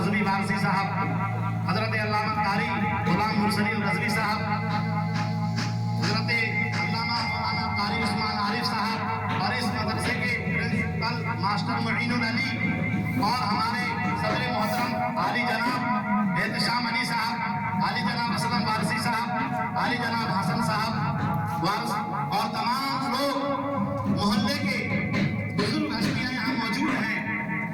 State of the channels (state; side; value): identical; both; correlation 1.00